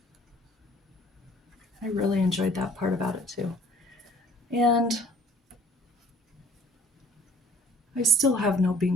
I really enjoyed that part about it too. And I still have no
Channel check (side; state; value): both; normal; correlation 0.53